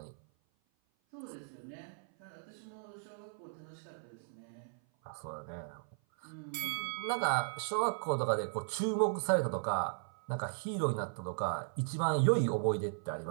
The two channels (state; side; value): silent; left; 53 dB below the other